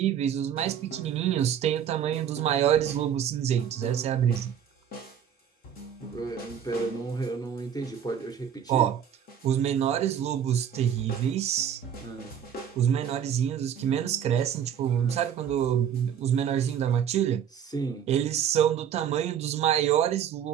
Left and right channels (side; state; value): left; quieter; 8.9 dB